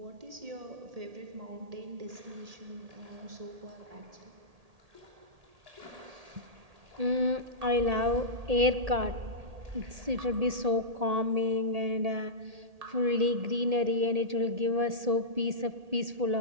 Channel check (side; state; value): left; late; 1.8 ms